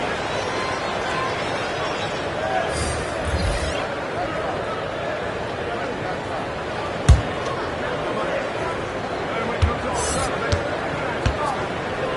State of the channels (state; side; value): identical; both; correlation 1.00